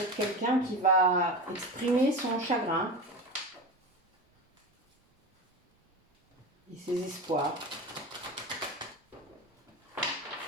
quelqu'un qui va exprimer son chagrin et ses espoirs.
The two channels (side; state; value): both; normal; correlation 0.26